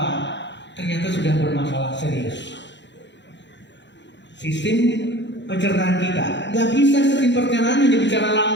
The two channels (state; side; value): late; right; 0.52 ms